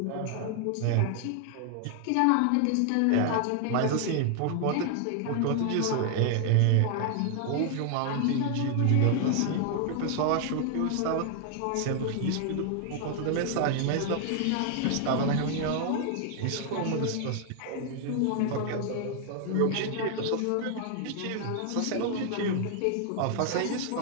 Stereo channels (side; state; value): both; different; correlation 0.00